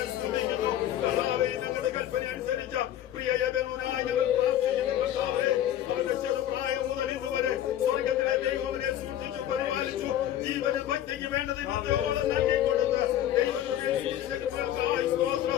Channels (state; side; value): quieter; right; 11.7 dB